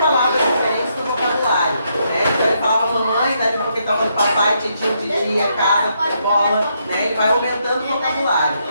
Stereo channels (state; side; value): inverted; both; correlation -0.77